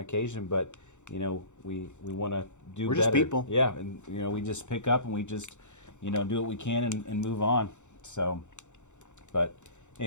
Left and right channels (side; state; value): right; late; 0.84 ms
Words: but we want to do We're better. just people. Yeah, and we just pick up and we just do what we can and move on. So, but